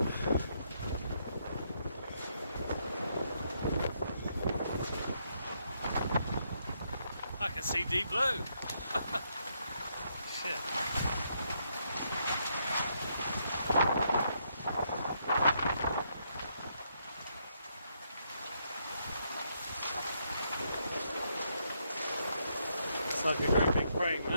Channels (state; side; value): inverted; both; correlation -0.76